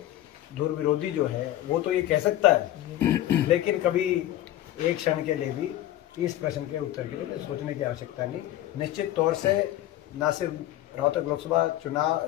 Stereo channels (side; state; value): right; quieter; 13.8 dB